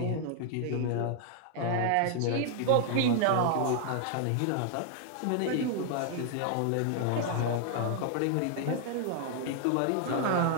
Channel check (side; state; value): both; different; correlation 0.00